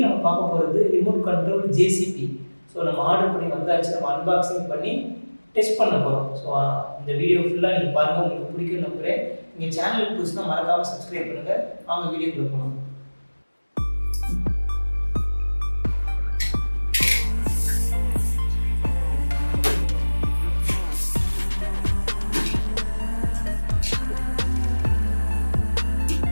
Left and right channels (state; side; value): inverted; both; correlation -1.00